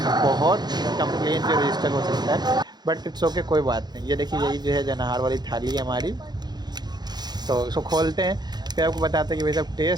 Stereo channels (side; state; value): left; late; 0.20 ms